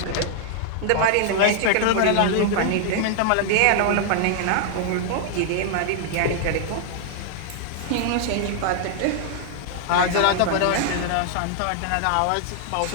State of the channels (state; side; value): different; both; correlation 0.00